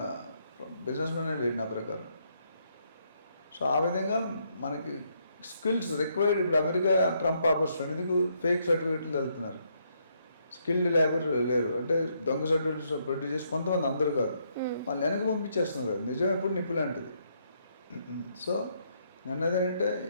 బిజినెస్ మ్యానే లేడు నా ప్రకారం. సో ఆ విధంగా మనకి స్కిల్స్ రిక్వైర్డ్. ఇప్పుడు అమెరికా ట్రంప్ ఆపర్చునిటీ ఎందుకు ఫేక్ సర్టిఫికెట్లు వెళ్తున్నారు, స్కిల్డ్ లేబర్ లేరు అంటే దొంగ సర్టిఫికెట్స్ ప్రొడ్యూస్ చేసి కొంతమంది, అందరూ కాదు, వాళ్ళు వెనక్కి పంపించేస్తున్నారు కదా. నిజం ఎప్పుడు నిప్పు లాంటిది. సో అన్నది ఏంటంటే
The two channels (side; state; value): both; inverted; correlation -0.74